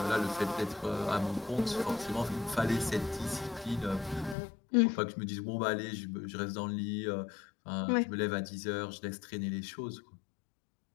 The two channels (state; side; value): drops out; right; at 4.4 s